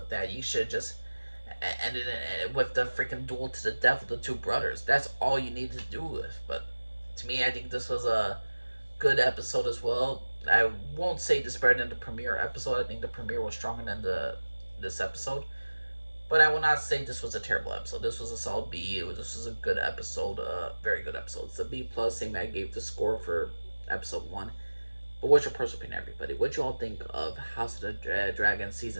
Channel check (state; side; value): inverted; both; correlation -1.00